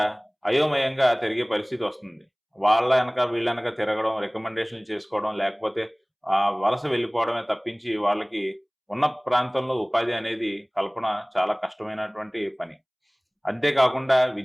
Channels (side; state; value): both; identical; correlation 1.00